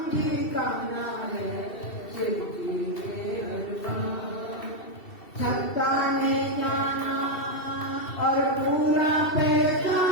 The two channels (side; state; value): right; late; 2.7 ms